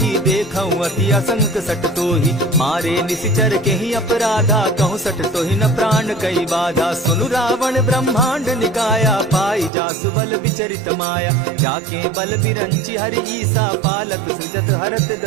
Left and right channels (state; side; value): drops out; left; at 9.7 s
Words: देखऊं अति असंक सट तोही। मारे निसिचर केहि अपराधा, कहूँ सट तोहि न प्राण कई बाधा। सुनु रावण ब्रह्मांड निकाया, पाई जासु बल विचरित माया। जाके बल बिरंचि हरि ईसा, पालत सृजत हरत